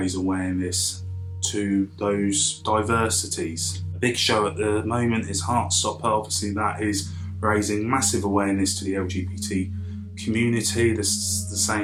awareness to those diversities. A big show at the moment is Heartstopper. Obviously that is raising massive awareness to the LGBT community. This the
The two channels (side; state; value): both; identical; correlation 1.00